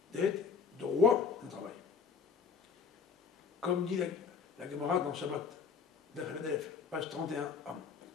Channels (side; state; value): right; quieter; 5.8 dB